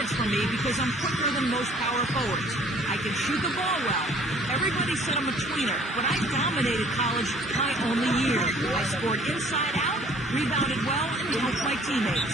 for me because I'm quicker than most power forwards. I can shoot the ball well. Everybody said I'm a tweener, but I dominated college my only year. I scored inside out, rebounded well, and helped my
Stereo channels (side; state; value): both; normal; correlation 0.55